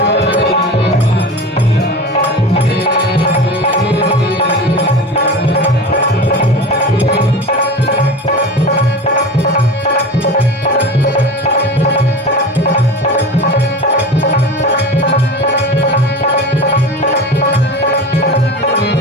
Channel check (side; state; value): both; normal; correlation 0.31